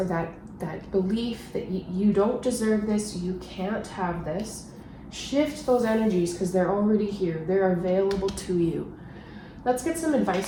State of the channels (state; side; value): identical; both; correlation 1.00